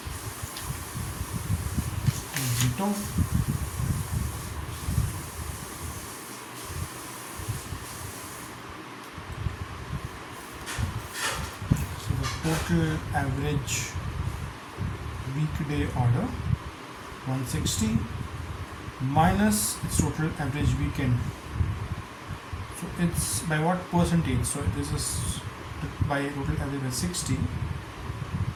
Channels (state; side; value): identical; both; correlation 1.00